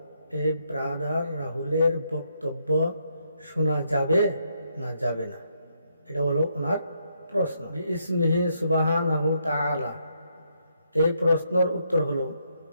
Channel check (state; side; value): inverted; both; correlation -0.76